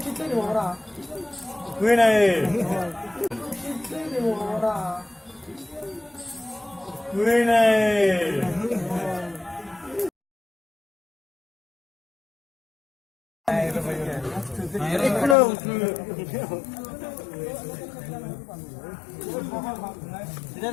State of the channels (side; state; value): right; drops out; at 15.4 s